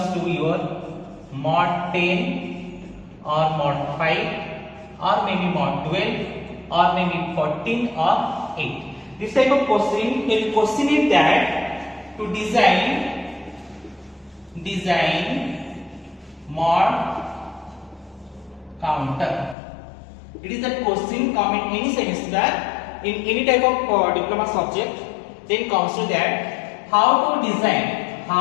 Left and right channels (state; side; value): drops out; right; at 19.6 s